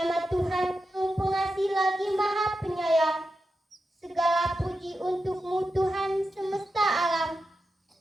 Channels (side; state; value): both; normal; correlation 0.89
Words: Tuhan yang pengasih lagi Maha Penyayang, segala puji untukmu Tuhan semesta alam.